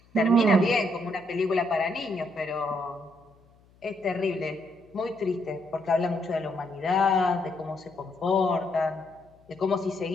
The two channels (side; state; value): left; noise; hum, 30 dB below the sound